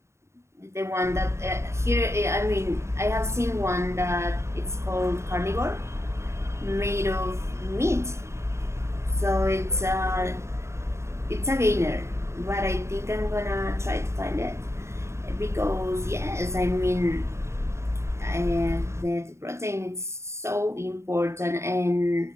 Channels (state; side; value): late; left; 0.13 ms